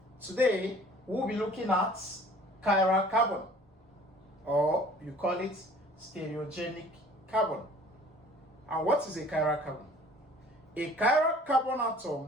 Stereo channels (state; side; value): normal; both; correlation 0.51